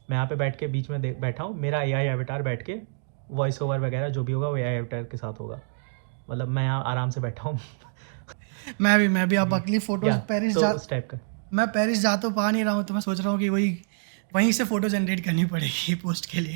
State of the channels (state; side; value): silent; left; digital silence